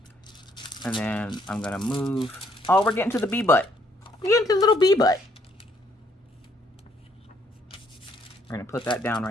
And then I'm going to move. Oh, we're getting to the bee butt. We're getting to the little bee butt. We're going to put that down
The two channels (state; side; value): normal; both; correlation 0.68